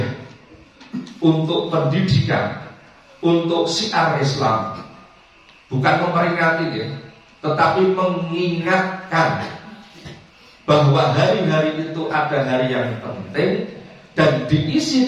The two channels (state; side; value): identical; both; correlation 1.00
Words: untuk pendidikan, untuk syiar Islam, bukan memperingati ya, tetapi mengingatkan bahwa hari-hari itu ada hari yang penting dan